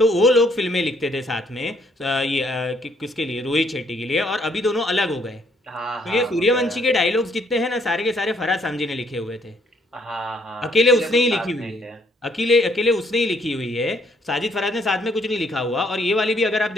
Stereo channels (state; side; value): normal; both; correlation 0.67